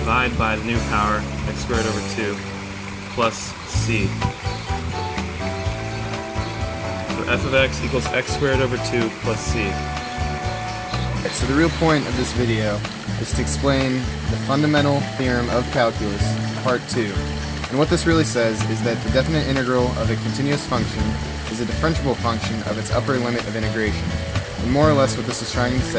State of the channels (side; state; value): both; identical; correlation 1.00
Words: by the new power, x squared over 2, plus c. So f of x equals x squared over 2 plus c. So the real point of this video is to explain the fundamental theorem of calculus, part 2. And what this really says is that the definite integral of a continuous function is a differentiable function of its upper limit of integration. And more or less what this is trying to